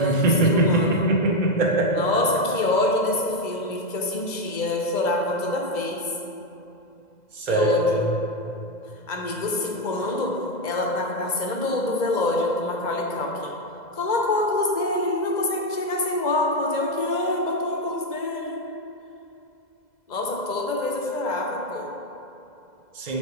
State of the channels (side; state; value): right; late; 2.0 ms